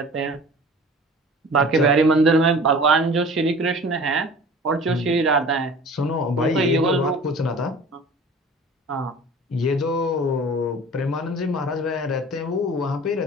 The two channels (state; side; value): normal; both; correlation 0.43